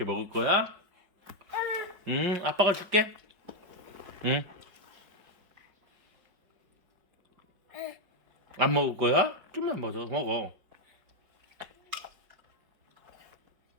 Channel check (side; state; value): left; late; 5.2 ms